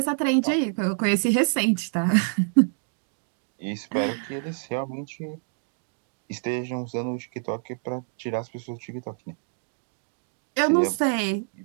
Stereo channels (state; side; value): silent; left; 60 dB below the other